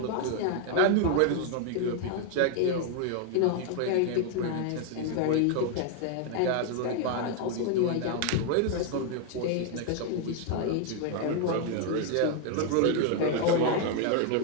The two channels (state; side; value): different; both; correlation 0.00